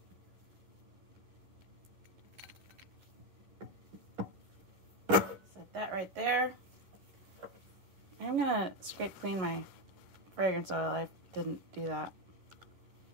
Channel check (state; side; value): late; left; 11 ms